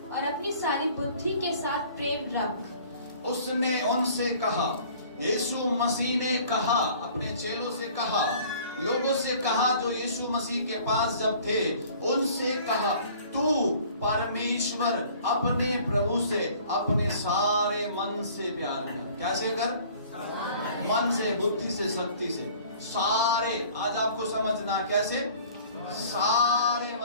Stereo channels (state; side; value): inverted; both; correlation -0.51